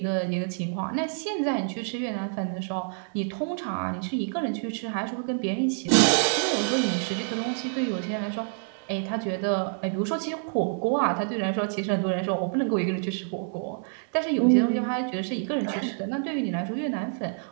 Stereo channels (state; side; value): silent; left; 60 dB below the other